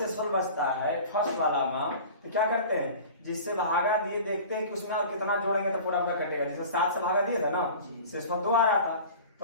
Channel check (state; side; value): inverted; both; correlation -0.39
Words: बचता है फर्स्ट वाला में, तो क्या करते हैं? जिससे भागा दिए देखते हैं कि उसमें और कितना जोड़ेंगे तो पूरा पूरा कटेगा। जैसे 7 से भागा दिए था ना, शेषफल 2 आ रहा था,